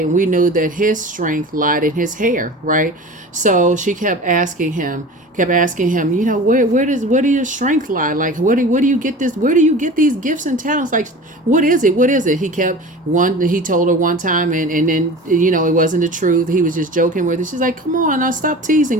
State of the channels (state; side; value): normal; both; correlation 0.37